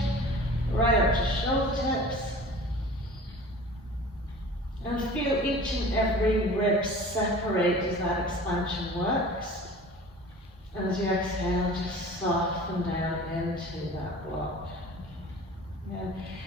right up to shoulder tips. And feel each and every rib separate as that expansion works. And as you exhale, just soften down into that block. Yeah.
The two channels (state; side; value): normal; both; correlation 0.42